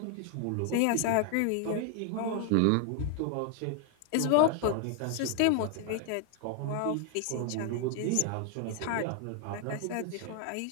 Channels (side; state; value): both; different; correlation 0.00